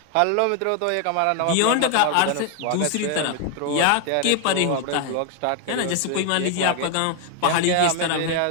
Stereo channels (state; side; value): different; both; correlation 0.00